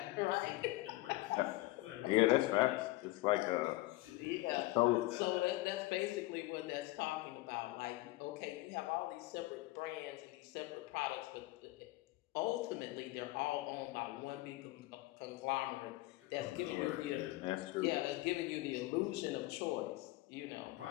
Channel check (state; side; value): quieter; right; 19.6 dB